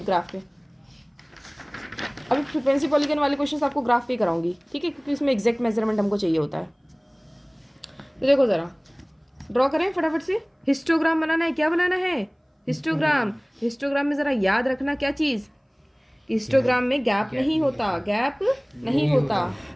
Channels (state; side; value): identical; both; correlation 1.00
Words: पे अभी फ्रीक्वेंसी पॉलीगन वाले क्वेश्चन आपको ग्राफ पे कराऊंगी, ठीक है, क्योंकि इसमें एग्जैक्ट मेजरमेंट हमको चाहिए होता है। तो देखो ज़रा ड्रॉ करें फटाफट से। हिस्टोग्राम बनाना है, क्या बनाना है? हिस्टोग्राम। हिस्टोग्राम में ज़रा याद रखना क्या चीज़, हिस्टोग्राम में गैप नहीं होता, गैप नहीं होता,